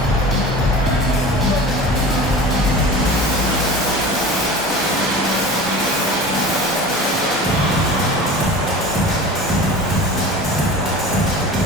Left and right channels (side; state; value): both; normal; correlation 0.37